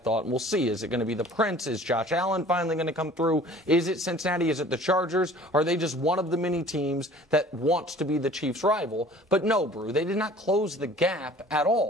and we'll see. Is it going to be the Prince? Is Josh Allen finally going to come through? Is it Cincinnati? Is it the Chargers? Are they just one of the many teams that wants to be the Chiefs' rival? But no, Brew, they did not close the gap at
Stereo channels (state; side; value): normal; both; correlation 0.48